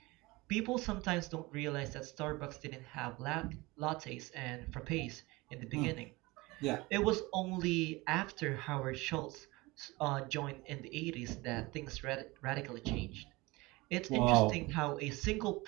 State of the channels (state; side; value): quieter; left; 22.5 dB